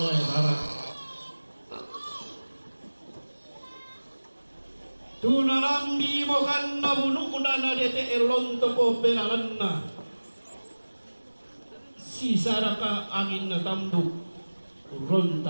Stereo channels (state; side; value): inverted; both; correlation -1.00